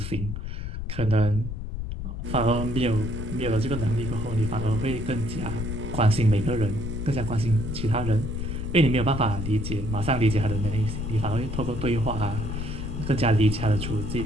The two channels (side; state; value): left; noise; rumble, 5 dB below the sound